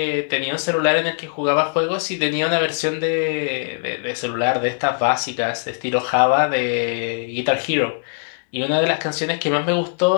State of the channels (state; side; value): silent; right; digital silence